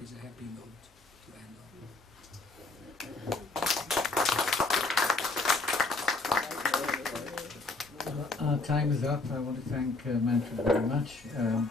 is a happy note to end on. Our time is up. I want to thank Manfred very much.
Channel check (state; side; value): quieter; right; 3.5 dB